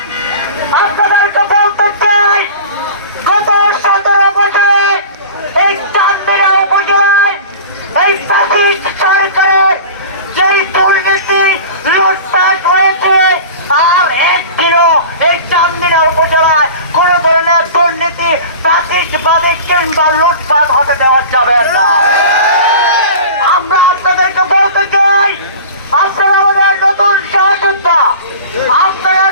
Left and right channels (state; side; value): inverted; both; correlation -0.38